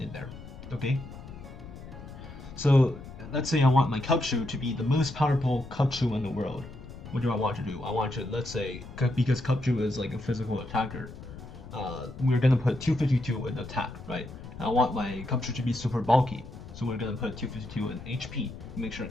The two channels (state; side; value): noise; left; rumble, 14 dB below the sound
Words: there, okay? So, let's say I want my Kachu to be the most powerful Kachu in the world. What do I want to do? I want to, let's say, because Kachu is like a physical attacker, we're gonna put 252 in attack, right? I want my Kachu to be super bulky, so we're gonna put 252 in HP to make sure